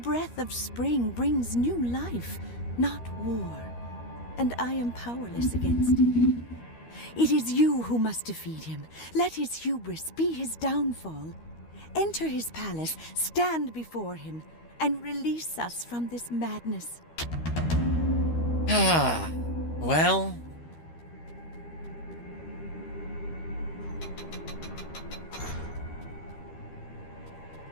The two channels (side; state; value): right; late; 13 ms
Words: of spring, brings new life, not war, and I am powerless against him. It is you who must defeat him. Let his hubris be his downfall. Enter his palace, stand before him, and release us from this madness. Ah, well.